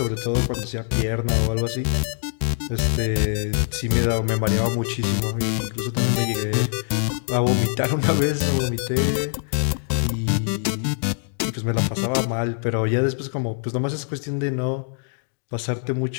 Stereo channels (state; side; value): silent; right; 62 dB below the other